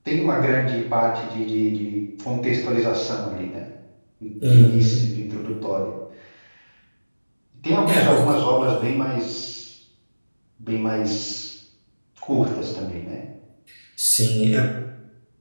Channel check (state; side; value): inverted; both; correlation -1.00